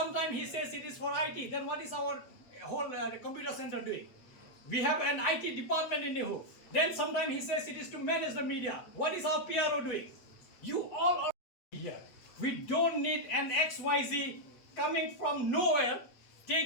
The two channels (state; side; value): late; right; 8.2 ms